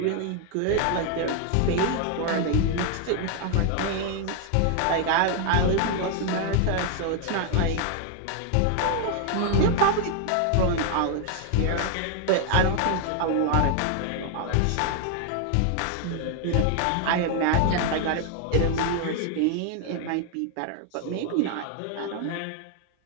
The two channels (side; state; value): both; different; correlation 0.00